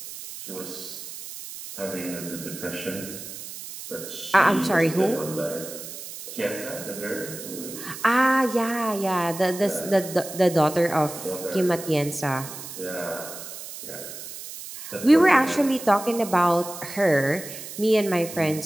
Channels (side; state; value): right; noise; hiss, 11 dB below the sound